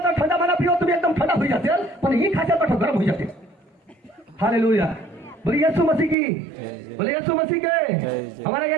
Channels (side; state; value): left; drops out; at 6.2 s